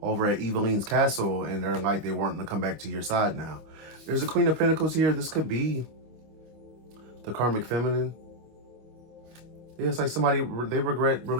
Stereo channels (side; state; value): left; late; 25 ms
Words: over at Eveline's castle and they're like they weren't going to come back to your side now. There's a Queen of Pentacles here. This could be the karmic feminine. Yeah, it's like somebody, they regret